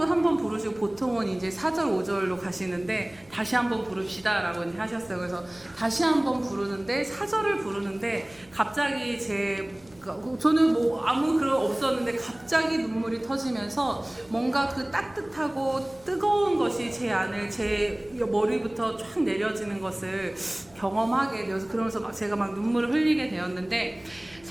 부르시고 보통은 이제 4절 5절로 가시는데 다시 한번 부릅시다라고 이제 하셨어요. 그래서 다시 한번 부르는데 4절을 부르는데 갑자기 저는 뭐 아무 그런 없었는데 갑자기 눈물이 터지면서 뭔가 그 따뜻하고 뜨거운 것이 제 머리부터 쫙 내려지는 것을 경험하게 되어서 그러면서 제가 막 눈물을 흘리게 되었는데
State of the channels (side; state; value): right; noise; hum, 28 dB below the sound